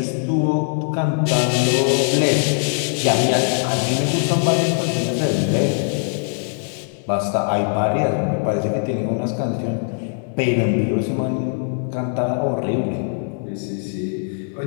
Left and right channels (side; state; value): right; silent; 57 dB below the other